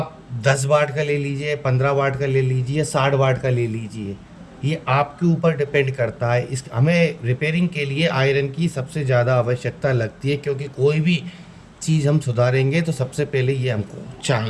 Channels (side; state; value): both; identical; correlation 1.00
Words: 10 वाट का ले लीजिए, 15 वाट का ले लीजिए, 60 वाट का ले लीजिए, ये आपके ऊपर डिपेंड करता है। इस हमें रिपेयरिंग के लिए आयरन की सबसे ज़्यादा आवश्यकता लगती है, क्योंकि कोई भी चीज़ हम सुधारेंगे तो सबसे पहले ये हमको